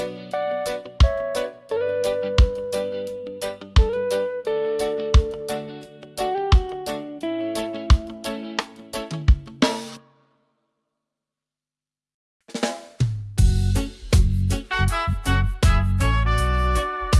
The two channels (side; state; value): both; identical; correlation 1.00